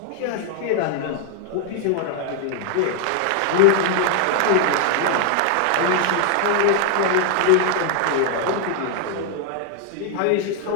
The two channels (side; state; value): both; different; correlation 0.00